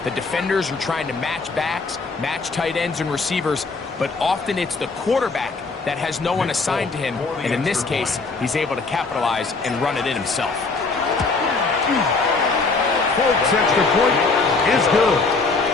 The defenders are trying to match backs, match tight ends and receivers, but often it's the quarterback that has no one assigned to him, and in this case, he's able to capitalize and run it in himself. Folks' extra point is good.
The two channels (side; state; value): right; quieter; 4.0 dB